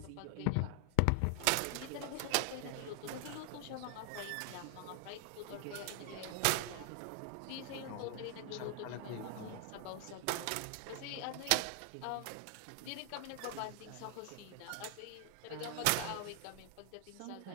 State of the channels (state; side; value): different; both; correlation 0.00